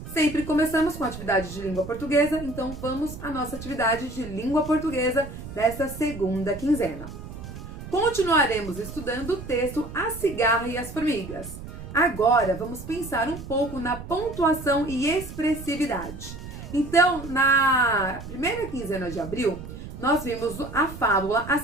Sempre começamos com a atividade de língua portuguesa, então vamos à nossa atividade de língua portuguesa desta segunda quinzena. Continuaremos estudando o texto A Cigarra e as Formigas. Agora vamos pensar um pouco na pontuação e expressividade. Então, na primeira quinzena de abril, nós vimos a fábula A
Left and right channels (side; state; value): right; noise; rumble, 11 dB below the sound